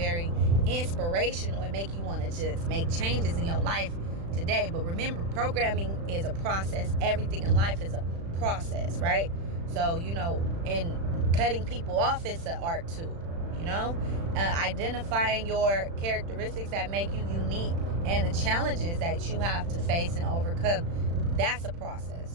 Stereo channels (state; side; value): late; left; 35 ms